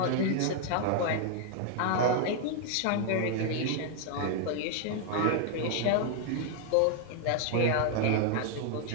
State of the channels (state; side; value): different; both; correlation 0.00